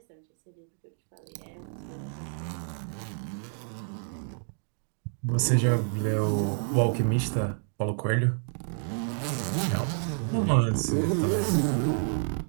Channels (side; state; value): left; silent; 58 dB below the other